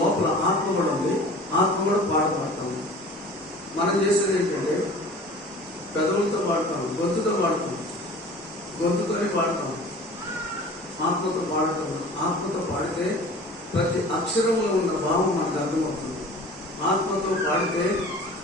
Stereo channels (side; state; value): both; normal; correlation 0.42